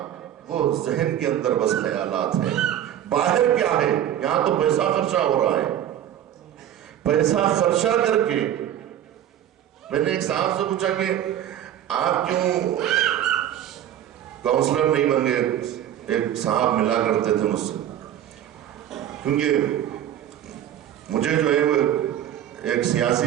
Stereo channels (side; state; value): left; quieter; 11.0 dB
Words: وہ ذہن کے اندر بس خیالات ہیں. باہر کیا ہے؟ یہاں تو پیسہ خرچہ ہو رہا ہے. پیسہ خرچہ کر کے میں نے ایک صاحب سے پوچھا کہ آپ کیوں کاؤنسلر نہیں بن گئے؟ ایک صاحب ملا کرتے تھے مجھ سے، کیونکہ مجھے جو ہے وہ ایک